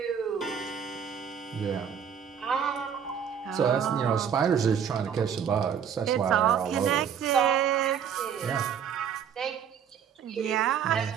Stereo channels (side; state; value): left; quieter; 7.9 dB